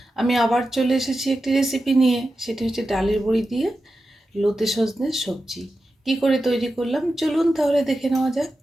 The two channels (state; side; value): normal; both; correlation 0.91